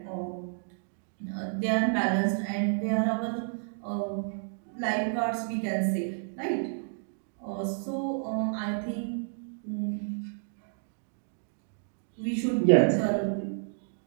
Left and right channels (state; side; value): silent; left; digital silence